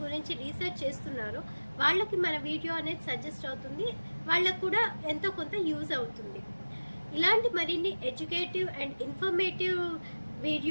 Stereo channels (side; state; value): both; inverted; correlation -1.00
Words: గురించి రీసెర్చ్ చేస్తున్నారో వాళ్ళకి మన వీడియో అనేది సజెస్ట్ అవుతుంది, వాళ్ళకు కూడా ఎంతో కొంత యూజ్ అవుతుంది. ఇలాంటి మరిన్ని ఎడ్యుకేటివ్ అండ్ ఇన్ఫర్మేటివ్